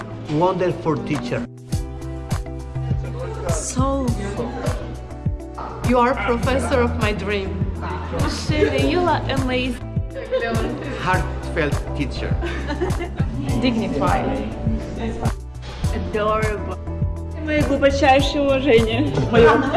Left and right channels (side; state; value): both; identical; correlation 1.00